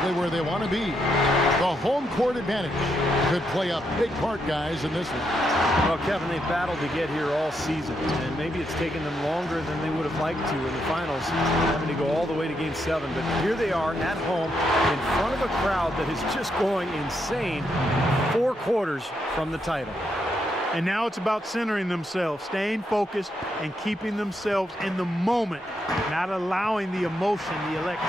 where they want to be. The home court advantage could play a big part, guys, in this one. Well, Kevin, they've battled to get here all season, and maybe it's taken them longer than they would have liked to in the finals, having to go all the way to Game 7. But here they are at home in front of a crowd that is just going insane 4 quarters from the title. And now it's about centering themselves, staying focused, and keeping themselves in the moment, not allowing the emotion, the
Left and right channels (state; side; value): normal; both; correlation 0.80